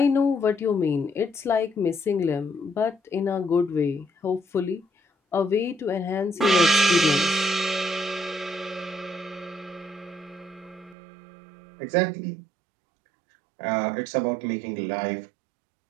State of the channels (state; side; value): drops out; left; at 11.0 s